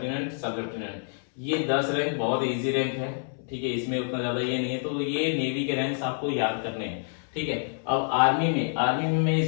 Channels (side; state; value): right; silent; 60 dB below the other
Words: सब लेफ्टिनेंट, ये 10 रैंक बहुत इजी रैंक है। ठीक है, इसमें उतना ज्यादा ये नहीं है, तो ये नेवी के रैंक्स आपको याद करने हैं। ठीक है, अब आर्मी में मैं